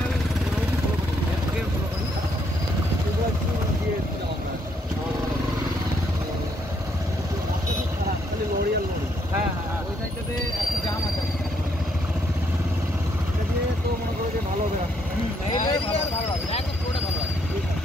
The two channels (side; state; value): both; normal; correlation 0.72